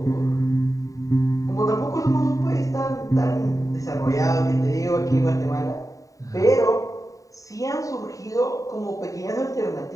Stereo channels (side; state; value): right; late; 0.16 ms